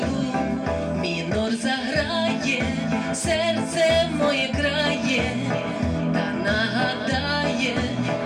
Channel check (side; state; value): both; identical; correlation 1.00